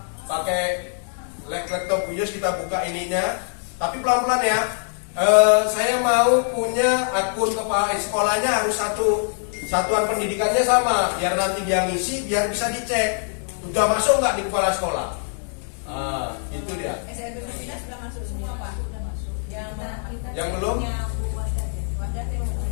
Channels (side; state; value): right; silent; 63 dB below the other